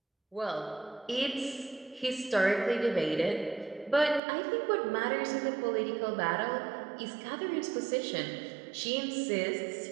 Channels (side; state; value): left; drops out; at 4.2 s